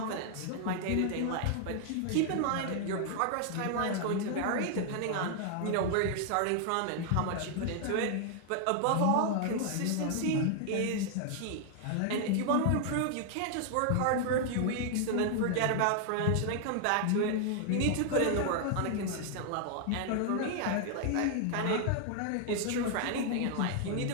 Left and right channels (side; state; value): both; different; correlation 0.00